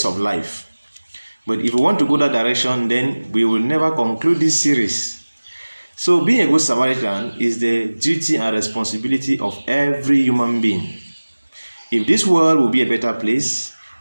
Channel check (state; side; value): inverted; both; correlation -1.00